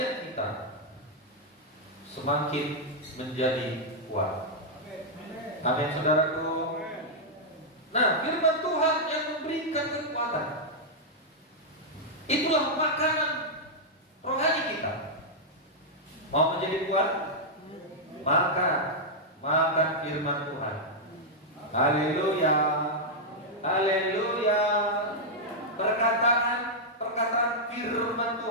kita semakin menjadi kuat. Amin saudaraku. Nah, firman Tuhan yang memberikan kekuatan, itulah makanan rohani kita. Mau menjadi kuat? Makan firman Tuhan. Haleluya. Haleluya. Perkataan firman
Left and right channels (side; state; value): both; normal; correlation -0.05